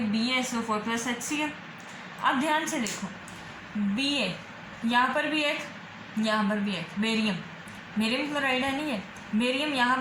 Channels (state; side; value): identical; both; correlation 1.00